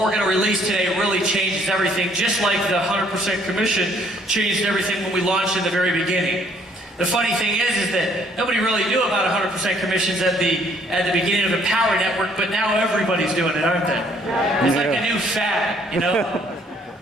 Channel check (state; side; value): normal; both; correlation 0.63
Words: going to release today really changes everything, just like the 100% commission changed everything when we launched in the very beginning. The funny thing is that nobody really knew about 100% commissions at the beginning of the Power Network, but now everybody's doing it, aren't they? It's like a new fad, you know?